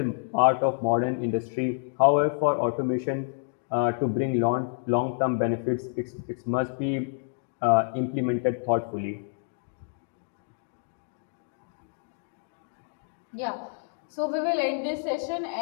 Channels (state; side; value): silent; right; digital silence